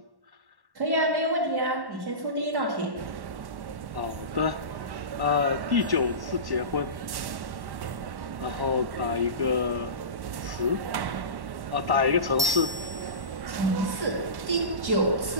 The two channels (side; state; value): left; late; 1.1 ms